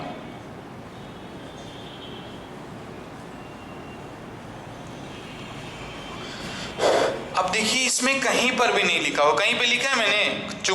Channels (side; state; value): both; identical; correlation 1.00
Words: अब देखिए इसमें कहीं पर भी नहीं लिखा हो, कहीं पे लिखा है मैंने